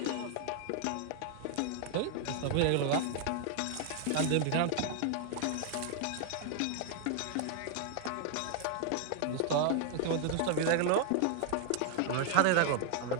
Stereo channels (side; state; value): both; different; correlation 0.00